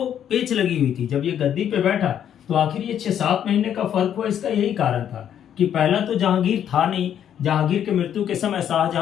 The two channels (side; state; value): right; quieter; 9.6 dB